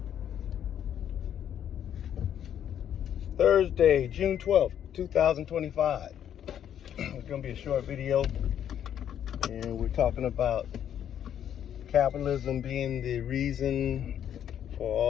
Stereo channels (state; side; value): quieter; right; 9.8 dB